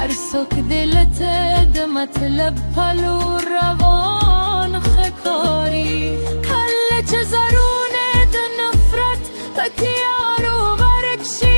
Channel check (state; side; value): inverted; both; correlation -1.00